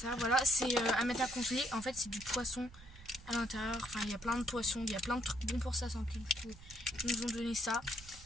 Voilà, c'est à mettre à congeler. En fait, c'est du poisson à l'intérieur. Enfin, il y a plein de poissons. Il y a plein de trucs bons pour sa santé. Du coup, ils nous ont donné ça.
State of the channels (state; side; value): noise; right; rumble, 18 dB below the sound